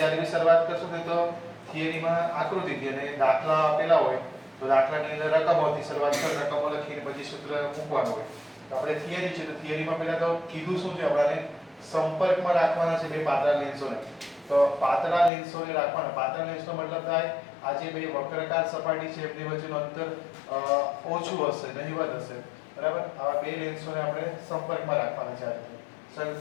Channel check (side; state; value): right; drops out; at 15.3 s